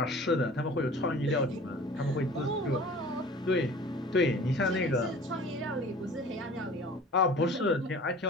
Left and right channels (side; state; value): both; normal; correlation 0.44